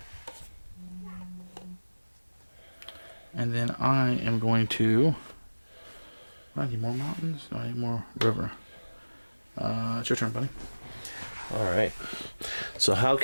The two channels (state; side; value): inverted; both; correlation -1.00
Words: And then I am going to. I need more mountains. No, I need more river. It's your turn, buddy. Alright. So how